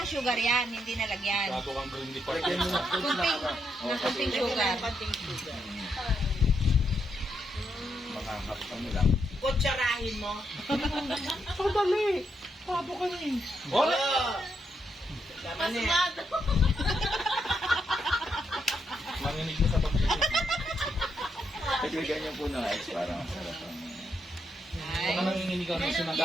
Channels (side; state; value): both; normal; correlation 0.79